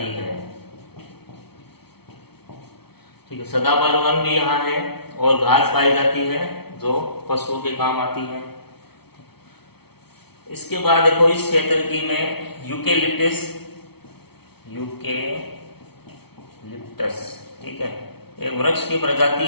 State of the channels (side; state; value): right; late; 0.97 ms